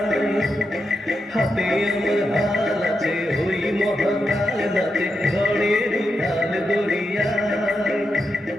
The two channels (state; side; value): normal; both; correlation 0.86